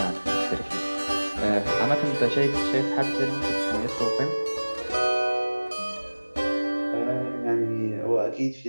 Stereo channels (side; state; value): both; inverted; correlation -1.00